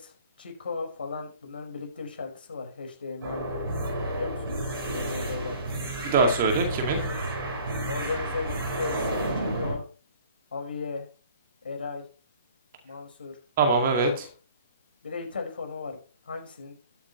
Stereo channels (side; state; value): both; inverted; correlation -0.51